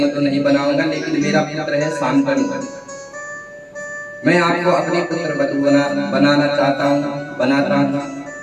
तो नहीं बनाऊंगा, लेकिन मेरा पुत्र है शांतनु, मैं आपको अपने पुत्र वधू बनाना चाहता हूँ, बनाता हूँ।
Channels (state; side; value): identical; both; correlation 1.00